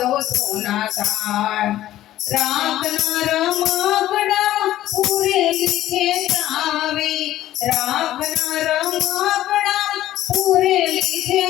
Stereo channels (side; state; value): right; quieter; 13.8 dB